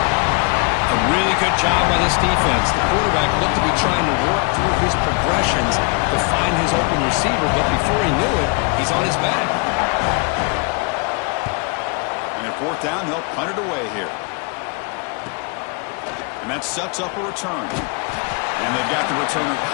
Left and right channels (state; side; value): quieter; right; 33.2 dB